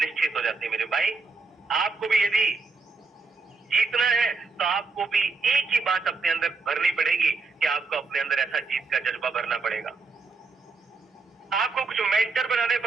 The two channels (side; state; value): left; quieter; 4.2 dB